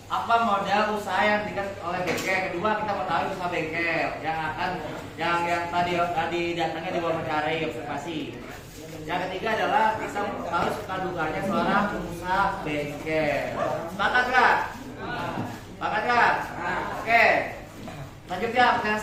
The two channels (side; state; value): both; identical; correlation 1.00